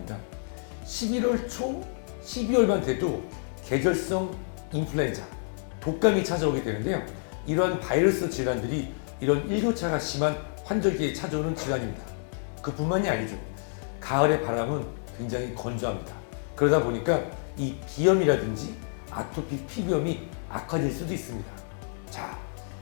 11월 초, 12월만 돼도 계절성 인플루엔자, 독감이 찾아오게 되는데요. 이러한 바이러스 질환들이 이런 일교차가 심한 환절기에 찾아오는 질환입니다. 그뿐만이 아니죠. 가을의 바람은 굉장히 건조합니다. 그러다 보니까 이 비염이라든지 아토피 피부염이 악화될 수도 있습니다. 자,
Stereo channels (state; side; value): silent; right; 59 dB below the other